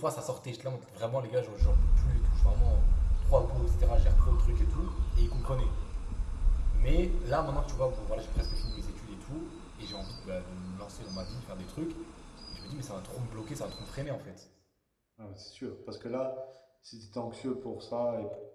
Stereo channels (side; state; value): both; identical; correlation 1.00